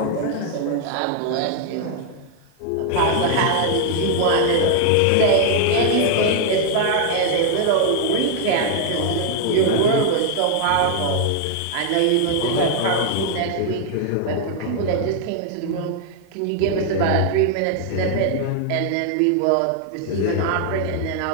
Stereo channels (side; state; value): both; different; correlation 0.00